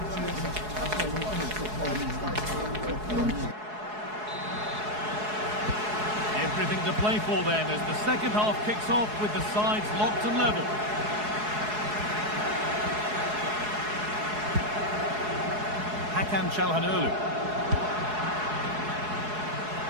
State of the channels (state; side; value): late; left; 4.7 ms